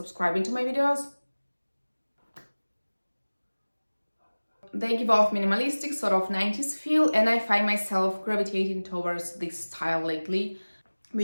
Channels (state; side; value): inverted; both; correlation -1.00